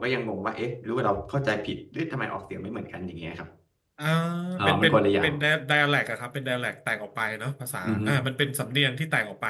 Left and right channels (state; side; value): identical; both; correlation 1.00